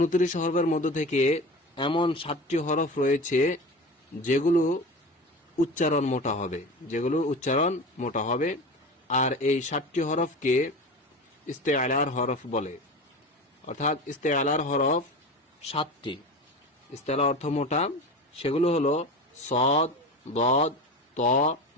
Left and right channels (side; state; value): both; normal; correlation 0.30